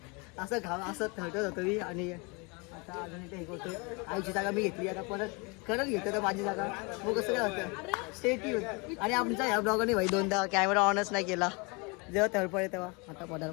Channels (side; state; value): right; quieter; 29.9 dB